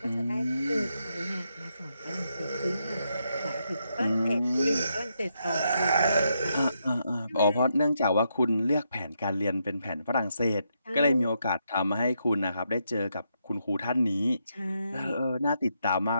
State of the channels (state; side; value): inverted; both; correlation -0.80